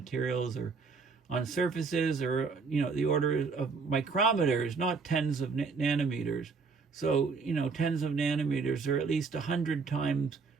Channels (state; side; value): quieter; left; 4.8 dB